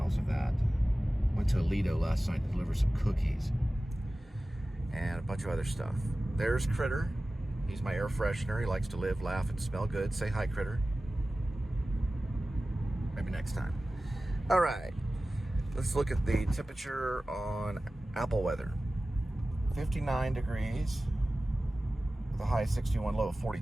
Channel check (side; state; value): both; normal; correlation 0.96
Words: of that. Went to Aledo last night to deliver some cookies and a bunch of other stuff. There's Critter. He's my air freshener. He likes to live, laugh, and smell good. Say hi, Critter. Maybe next time. All right, let's look at the temperature on Apple weather. 59 degrees with a high of 61, low of